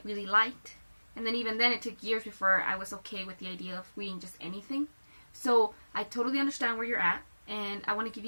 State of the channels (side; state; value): both; inverted; correlation -1.00